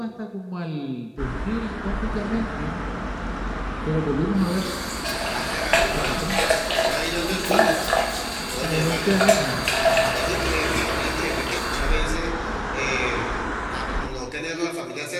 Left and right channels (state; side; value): identical; both; correlation 1.00